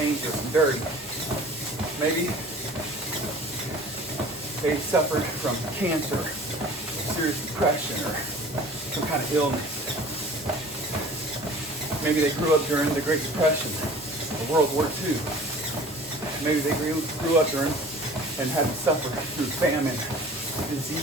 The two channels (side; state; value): both; normal; correlation 0.45